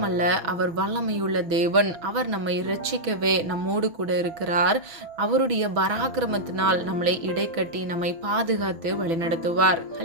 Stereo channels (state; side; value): late; left; 6.1 ms